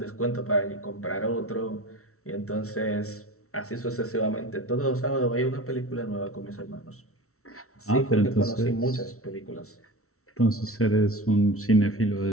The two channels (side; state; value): right; late; 0.63 ms